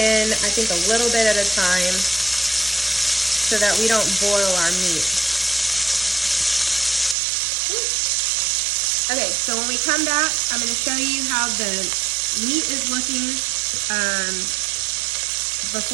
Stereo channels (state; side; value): drops out; left; at 7.2 s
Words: I think a little bit at a time, so that we don't boil our meat. Okay, so when we come back, I'm going to show you how the meat is looking